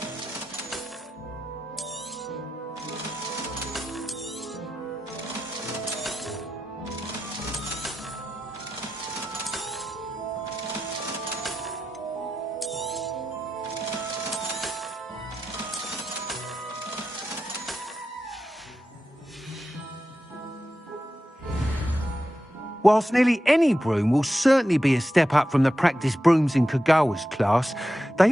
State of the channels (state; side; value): normal; both; correlation 0.90